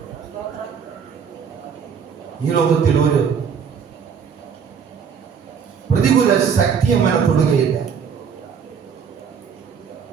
സ്തോത്രം. ഈ ലോകത്തിൽ ഒരു പ്രതികൂല ശക്തി അവനെ തൊടുകയില്ല.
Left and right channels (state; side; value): quieter; left; 6.9 dB